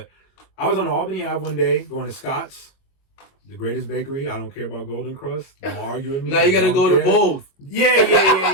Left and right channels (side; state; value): right; late; 22 ms